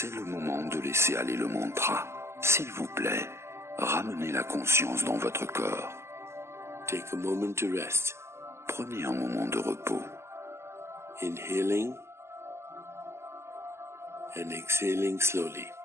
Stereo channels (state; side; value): late; left; 0.13 ms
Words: le moment de laisser aller le mantra. S'il vous plaît, ramenez la conscience dans votre corps. Take a moment to rest. Prenez un moment de repos. Inhaling and exhaling slowly.